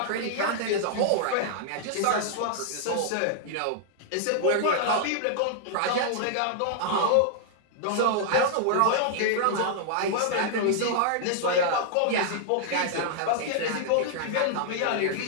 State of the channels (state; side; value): different; both; correlation -0.01